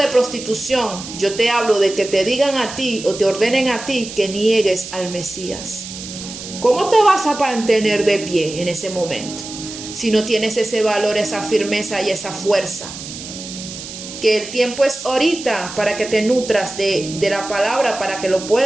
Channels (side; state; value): right; noise; hiss, 11 dB below the sound